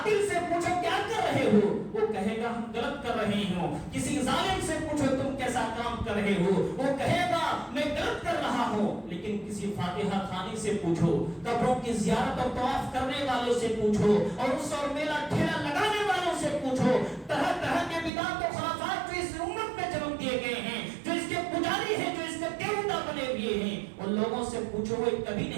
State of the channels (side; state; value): left; drops out; at 18.1 s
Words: سے پوچھو کیا کر رہے ہو، وہ کہے گا ہم غلط کر رہے ہوں۔ کسی ظالم سے پوچھو تم کیسا کام کر رہے ہو، وہ کہے گا میں غلط کر رہا ہوں۔ لیکن کسی فاتحہ خوانی سے پوچھو، قبروں کی زیارت اور طواف کرنے والوں سے پوچھو، اور اس اور میلہ ٹھیلا لگانے والوں سے پوچھو، طرح طرح کے بدعت و خرافات جو اس امت میں جنم دیے گئے ہیں، جو اس کے پجاری ہیں، جو اس کے دیوتا بنے ہوئے ہیں، ان لوگوں سے پوچھو، وہ کبھی